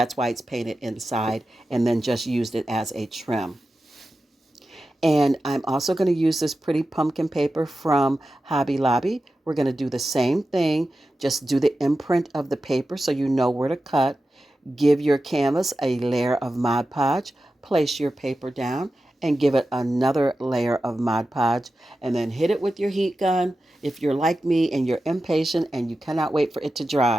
why it's painted inside, and then just used it as a trim. And I'm also going to use this pretty pumpkin paper from Hobby Lobby. We're going to do the same thing. Just do the imprint of the paper so you know where to cut. Give your canvas a layer of Mod Podge. Place your paper down and give it another layer of Mod Podge. And then hit it with your heat gun. If you're like me and you're impatient and you cannot wait for it to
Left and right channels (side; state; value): both; normal; correlation 0.92